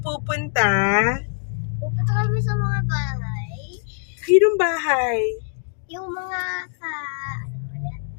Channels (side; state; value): right; silent; 63 dB below the other